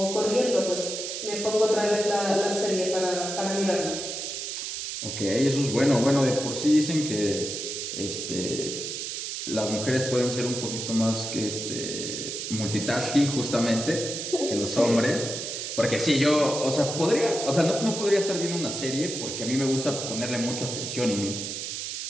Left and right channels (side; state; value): right; noise; hiss, 5 dB below the sound